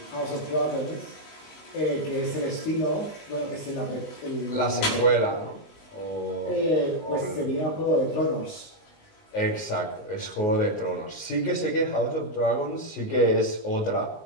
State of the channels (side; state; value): right; late; 19 ms